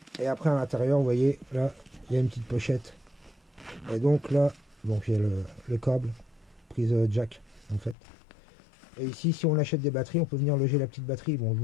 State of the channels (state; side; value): drops out; right; at 8.0 s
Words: Et après à l'intérieur, vous voyez, là, il y a une petite pochette. Et donc là, donc il y a le câble, prise jack en fait. Et ici, si on achète des batteries, on peut venir loger la petite batterie. Bon, je